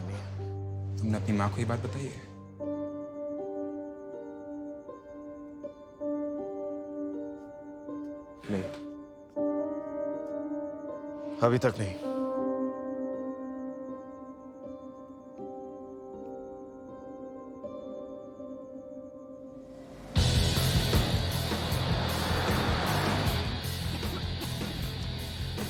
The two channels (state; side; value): identical; both; correlation 1.00